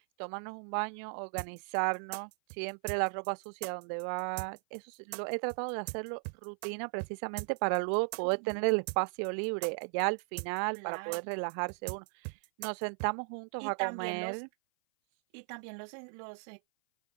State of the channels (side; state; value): left; silent; 54 dB below the other